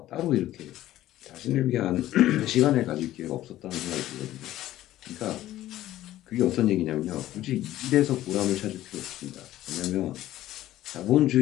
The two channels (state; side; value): quieter; right; 14.3 dB